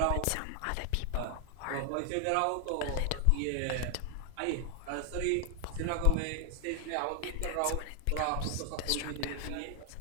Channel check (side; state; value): both; different; correlation 0.00